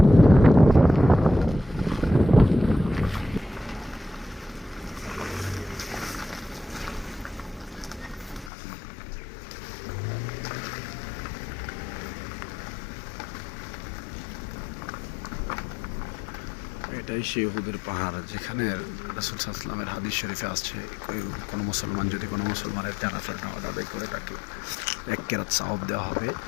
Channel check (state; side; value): drops out; right; at 8.5 s